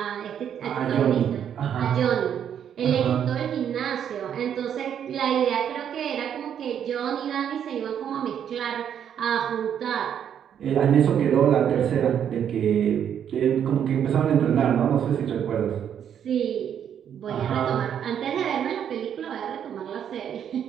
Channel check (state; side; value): quieter; left; 8.9 dB